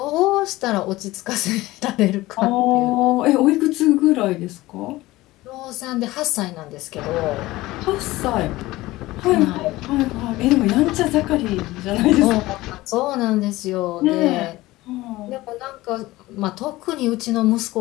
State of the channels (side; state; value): right; quieter; 18.4 dB